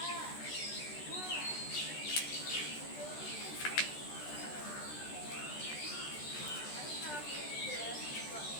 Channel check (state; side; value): late; right; 13 ms